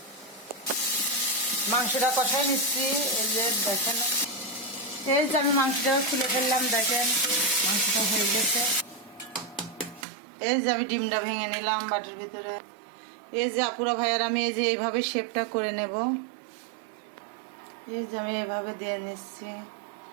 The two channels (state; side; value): drops out; left; at 10.1 s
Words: মাংসটা কষাই নিচ্ছি। এই যে দেখেন, এই যে আমি মাংসটা খুলে ফেললাম। দেখেন মাংসটা হয়ে গেছে। এই যে আমি ডিমটা ভেঙে নিলাম বাটির ভিতরে। এই যে আপুরা ভাইয়ার, আমি এই যে এইভাবে শেপটা করে নেব। এই যে আমি এইভাবে দিয়ে নিচ্ছি।